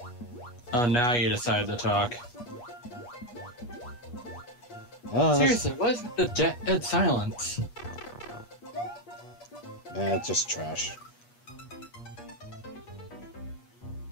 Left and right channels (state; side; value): late; right; 8.3 ms